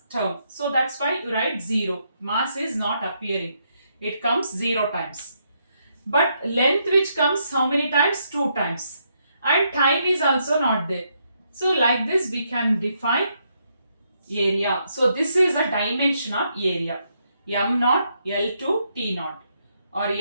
term. So that's why you write 0. Mass is not appearing. It comes 0 times. But length which comes how many times? 2 times. And time is also not there. So like this we can define area. So this is a dimension of area. M naught, L to T naught. Or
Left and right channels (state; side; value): inverted; both; correlation -0.77